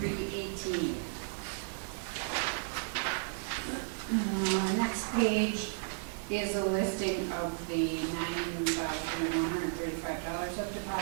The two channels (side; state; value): left; silent; 55 dB below the other